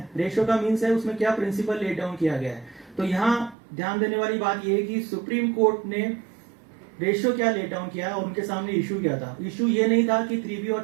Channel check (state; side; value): drops out; left; at 3.6 s